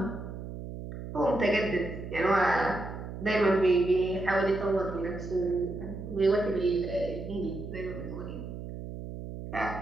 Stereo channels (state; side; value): noise; right; hum, 9 dB below the sound